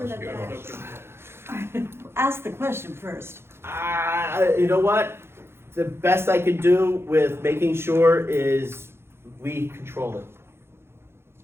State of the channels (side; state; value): left; late; 0.12 ms